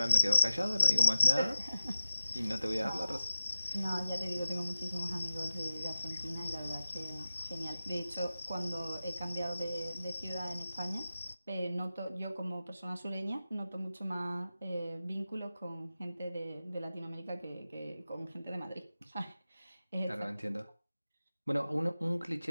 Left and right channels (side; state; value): both; inverted; correlation -0.92